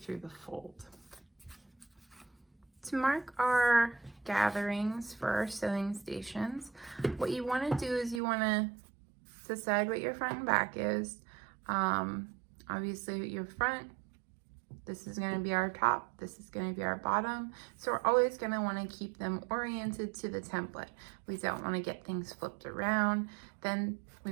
the fold. To mark our gatherings for our sewing stations, what you want to do is you want to decide what your front and back is. Obviously your front, this is going to be our top, this is going to be our bottom. So we're always going to want to keep them oriented to the template. We don't want to get things flipped around. Then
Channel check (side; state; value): left; drops out; at 8.2 s